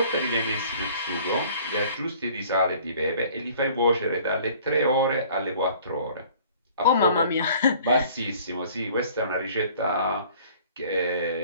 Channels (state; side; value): inverted; both; correlation -0.52